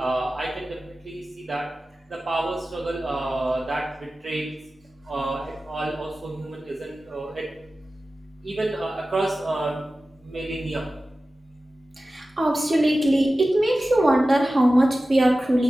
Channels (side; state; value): both; normal; correlation 0.95